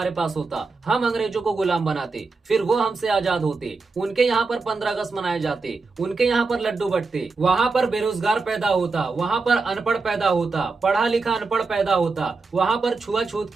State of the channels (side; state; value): left; quieter; 4.1 dB